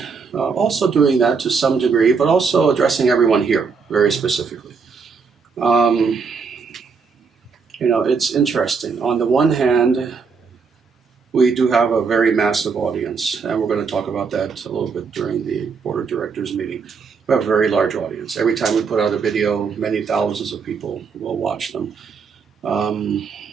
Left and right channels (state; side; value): quieter; left; 5.3 dB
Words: also doing that to some degree, but also addressing everyone here very specifically. You know, it's interesting. On the one hand, we do have a very massive audience, and we're going to talk about that a little bit during the board of directors meeting. We have a very large audience. Every time we put out a video, many thousands of people will watch them.